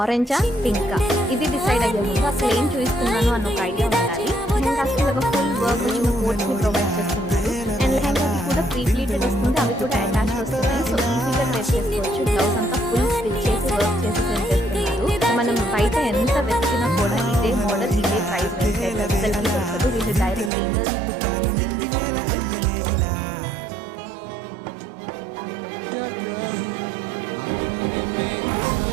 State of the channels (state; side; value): drops out; left; at 20.5 s